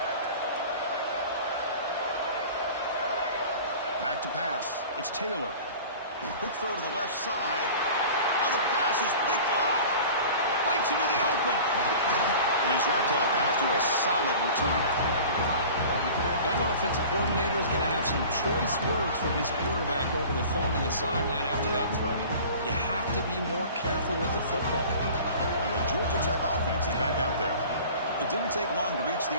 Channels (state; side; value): inverted; both; correlation -0.41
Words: Back to pass. It's Taylor. Quick throw to the left side. Oh, the pass is picked off. Breaks into the open. And he's wrapped up after a solid return. That offensive coordinator is going to have some choice words for his quarterback over the phone on the sideline after that throw. You have to be more careful with the football. And the Georgia Tech offense is back out there. It didn't take long to reach